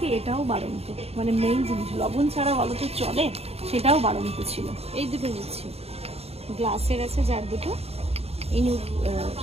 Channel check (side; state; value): left; late; 0.29 ms